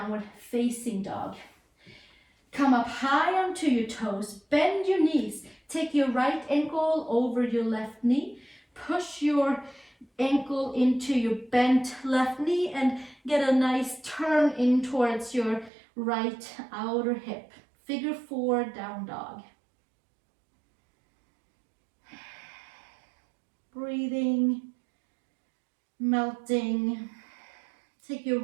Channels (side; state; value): left; drops out; at 15.7 s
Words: facing dog. Come up high onto your toes, bend your knees, take your right ankle over your left knee, push your ankle into your bent left knee and get a nice turn in towards your right outer hip. Figure 4 down dog. Breathing, melting. Take your